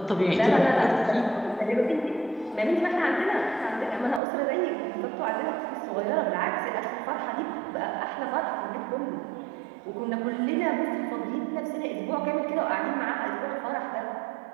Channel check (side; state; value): left; drops out; at 4.2 s